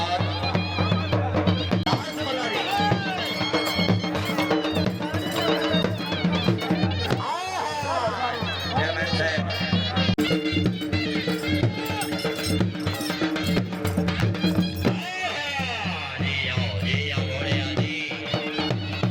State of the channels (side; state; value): both; identical; correlation 1.00